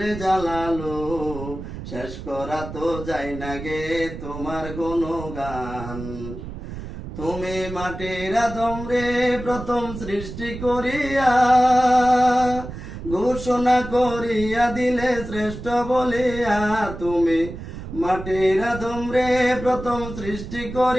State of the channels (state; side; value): noise; right; rumble, 10 dB below the sound